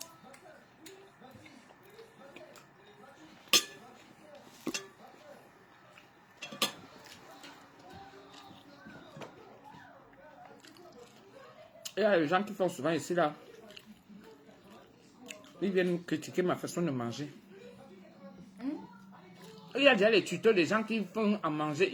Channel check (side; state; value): both; identical; correlation 1.00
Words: y a des gens qui font souvent ici là. Ils viennent critiquer ma façon de manger. Il y a déjà les tutos des gens qui font à manger.